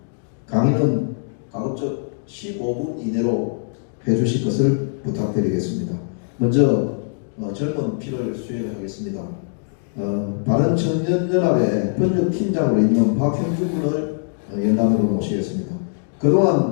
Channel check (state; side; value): silent; right; digital silence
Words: 강의는 가급적 15분 이내로 해주실 것을 부탁드리겠습니다. 먼저 젊은 피를 수행하겠습니다. 바른청년연합의 번역팀장으로 있는 박형준 군을 연단으로 모시겠습니다.